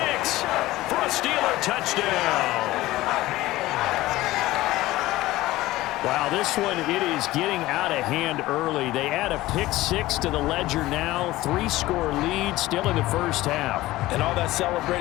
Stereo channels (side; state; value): right; quieter; 17.4 dB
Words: for a Steeler touchdown. Wow, this one, it is getting out of hand early. They add a pick six to the ledger now. 3-score lead still in the first half. And all that